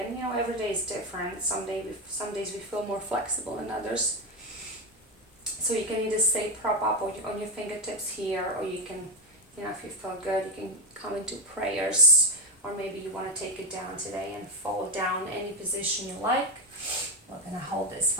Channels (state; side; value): normal; both; correlation 0.10